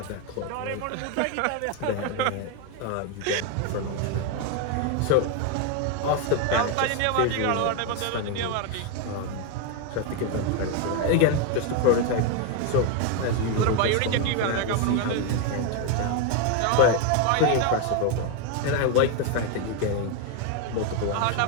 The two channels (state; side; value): different; both; correlation 0.01